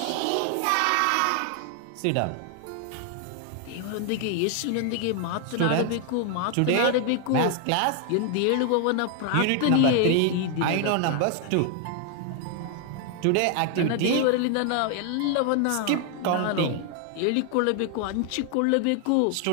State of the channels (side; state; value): both; different; correlation 0.00